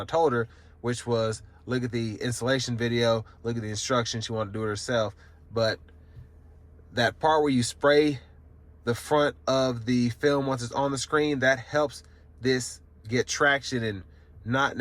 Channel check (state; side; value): identical; both; correlation 1.00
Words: told her, which was look at the installation video, look at the instructions. She wanted to do it herself. But that part where you spray the front of the film once it's on the screen, that helps this get traction and not